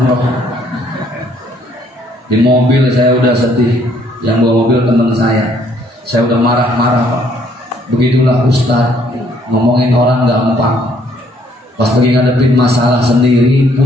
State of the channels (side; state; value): both; normal; correlation 0.65